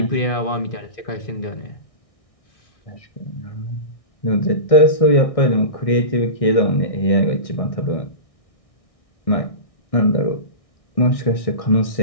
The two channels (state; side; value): late; right; 1.6 ms